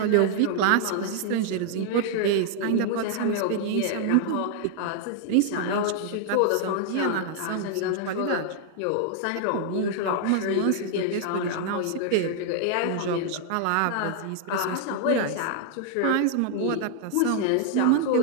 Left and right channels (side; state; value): both; different; correlation 0.00